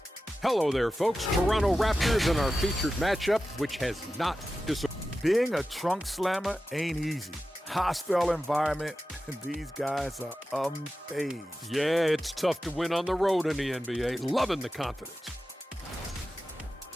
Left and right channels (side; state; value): both; normal; correlation 0.93